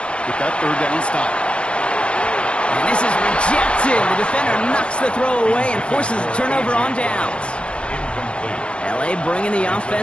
with that 3rd down stop. And this is rejected. The defender knocks the throw away and forces a turnover on downs. LA bringing the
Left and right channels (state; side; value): late; right; 0.058 ms